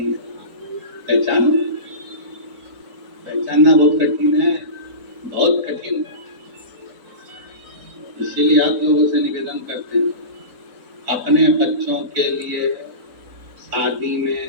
है, पहचानो। पहचानना बहुत कठिन है, बहुत कठिन। इसीलिए आप लोगों से निवेदन करते हैं, अपने बच्चों के लिए शादी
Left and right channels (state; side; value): late; left; 3.9 ms